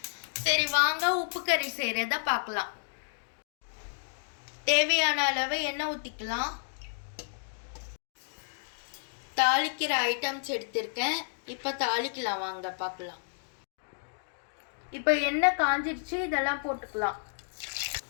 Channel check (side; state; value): right; silent; digital silence